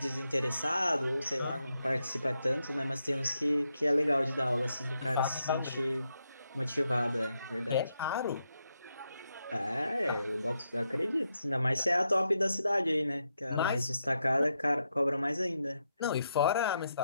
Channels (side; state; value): both; inverted; correlation -0.83